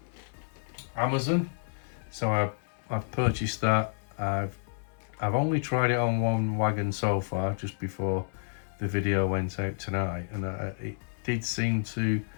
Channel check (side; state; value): right; silent; 58 dB below the other